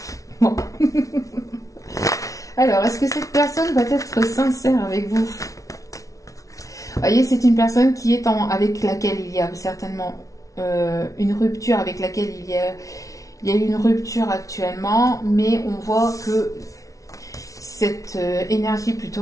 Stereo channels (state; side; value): late; right; 0.17 ms